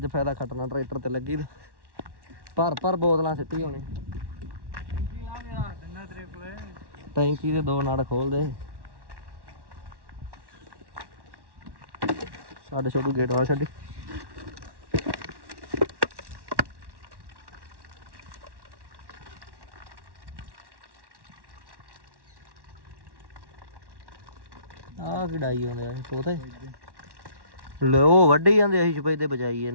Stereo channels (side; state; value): left; late; 1.1 ms